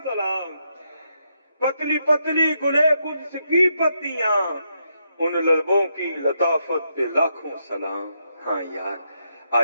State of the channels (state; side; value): inverted; both; correlation -0.80